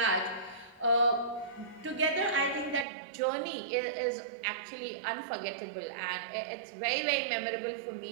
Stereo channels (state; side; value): drops out; left; at 2.9 s